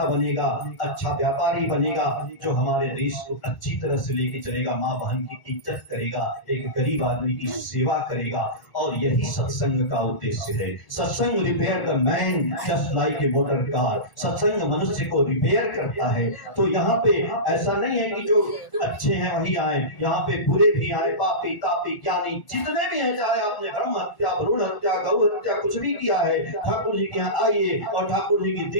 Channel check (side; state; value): right; late; 1.1 ms